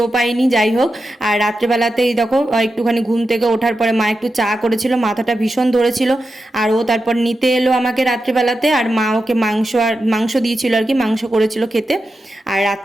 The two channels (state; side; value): normal; both; correlation 0.90